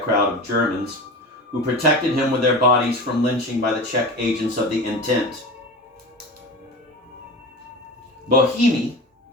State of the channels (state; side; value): normal; both; correlation 0.30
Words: crowd of Germans who protected him with their bodies from lynching by the Czech agents of the Intent. Bohemy